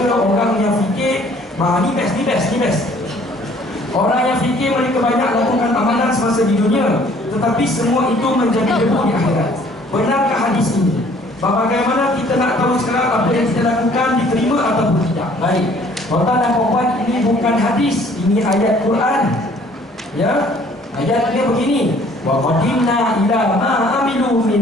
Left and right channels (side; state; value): both; normal; correlation 0.57